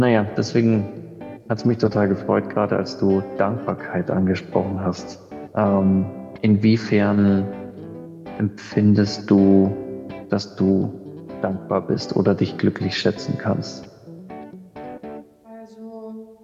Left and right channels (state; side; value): identical; both; correlation 1.00